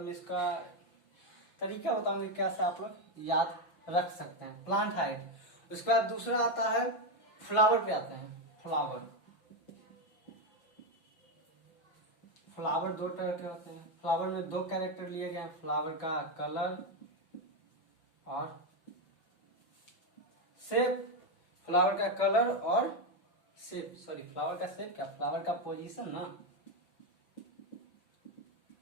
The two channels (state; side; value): late; right; 5.8 ms